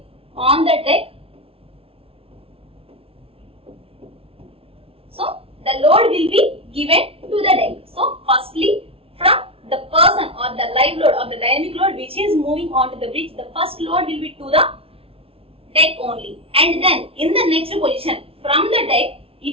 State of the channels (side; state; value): left; late; 0.27 ms